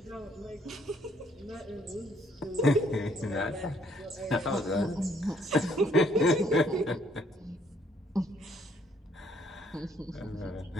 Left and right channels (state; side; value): normal; both; correlation 0.67